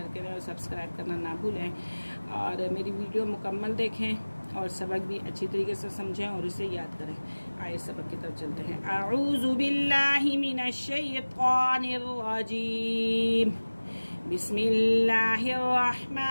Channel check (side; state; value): both; inverted; correlation -1.00